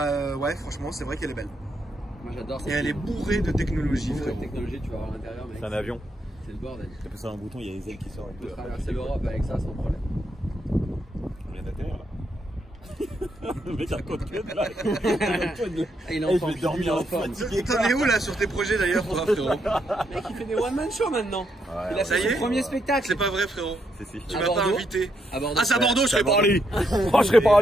ouais, franchement, c'est vrai qu'elle est belle. Moi j'adore Et elle est bourrée de technologie, La frérot. technologie, tu vas voir à l'intérieur, mec. C'est un avion. C'est le bordel. T'as passé un bouton, il y a les ailes qui sortent. On peut traverser l'Europe avec ça sans problème. On vient d'atterrir là. Le mec raconte que de là. Ah, il est Eh, en je forme, vais dormir il est en en forme. fatigué. T'en es où là sur tes projets d'ailleurs, frérot? Mec, il fait des one-man show maintenant. Ouais, Il a ça fait y son est premier spectacle. C'est pas vrai, frérot. Si. Tu À m'as pas Bordeaux invité. À Bordeaux. Ah, c'est à Bordeaux, je serais pas allé. Oh, je serais pas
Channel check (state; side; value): normal; both; correlation 0.78